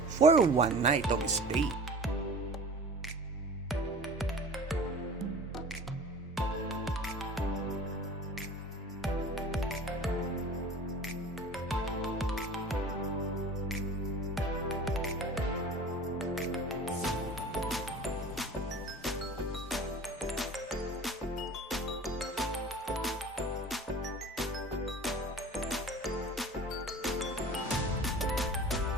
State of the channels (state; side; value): normal; both; correlation 0.40